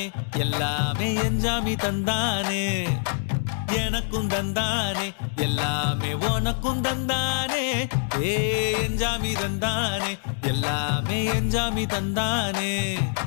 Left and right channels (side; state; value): right; silent; digital silence